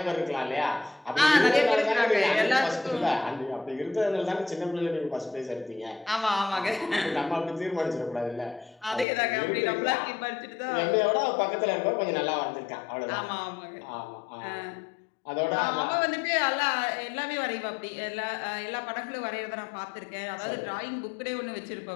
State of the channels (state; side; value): drops out; right; at 9.1 s